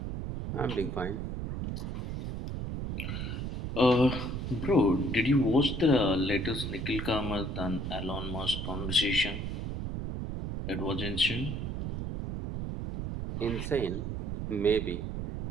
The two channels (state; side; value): noise; right; rumble, 4 dB below the sound